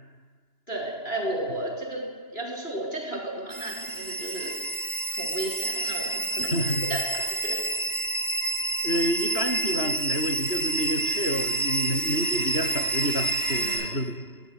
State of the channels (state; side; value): late; right; 2.9 ms